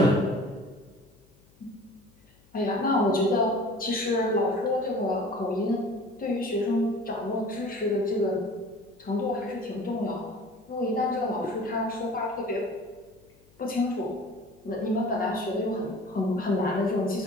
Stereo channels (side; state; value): left; noise; hum, 30 dB below the sound